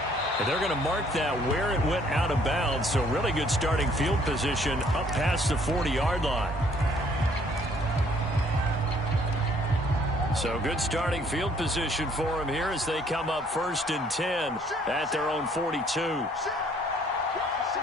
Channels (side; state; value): both; normal; correlation 0.62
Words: And they're going to mark that where it went out of bounds. So really good starting field position up past the 40-yard line. So good starting field position for him here as they come up 1st and 10 at their own 42.